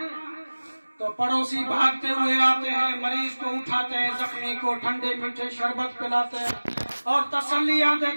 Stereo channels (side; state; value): both; inverted; correlation -1.00